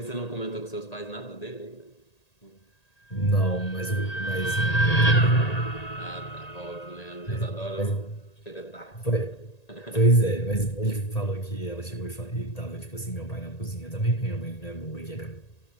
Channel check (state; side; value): late; right; 1.8 ms